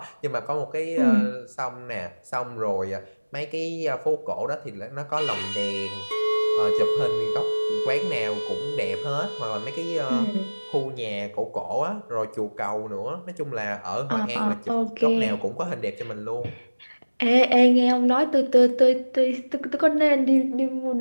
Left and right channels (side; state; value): both; inverted; correlation -1.00